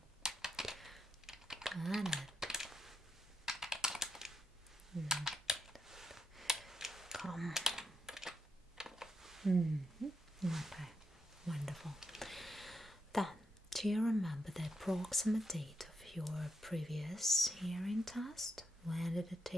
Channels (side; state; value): both; normal; correlation 0.81